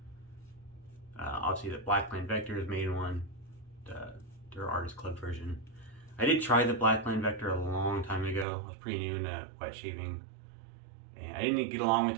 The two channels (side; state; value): left; drops out; at 8.5 s